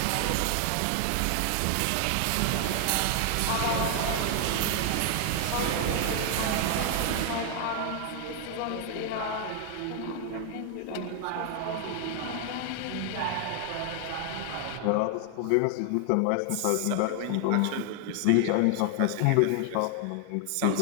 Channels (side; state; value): both; different; correlation 0.00